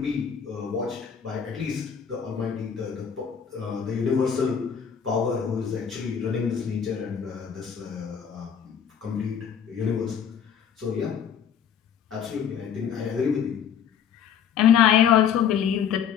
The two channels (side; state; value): right; quieter; 8.0 dB